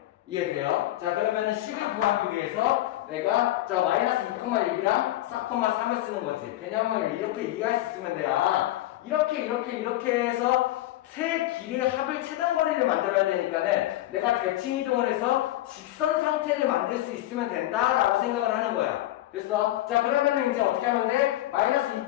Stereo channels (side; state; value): right; quieter; 15.5 dB